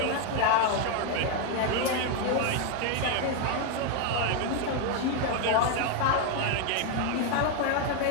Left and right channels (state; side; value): different; both; correlation 0.01